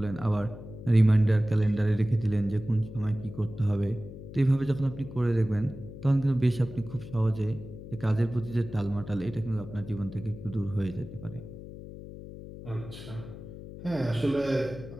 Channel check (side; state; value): left; noise; hum, 13 dB below the sound